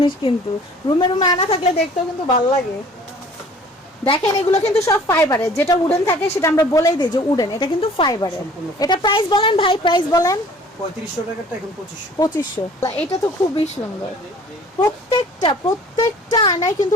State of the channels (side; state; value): both; normal; correlation 0.51